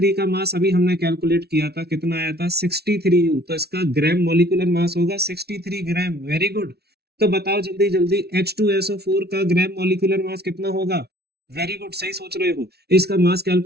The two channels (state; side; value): late; left; 0.47 ms